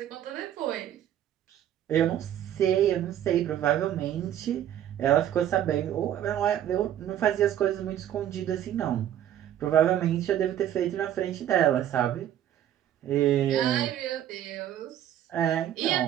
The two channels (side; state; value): left; quieter; 11.0 dB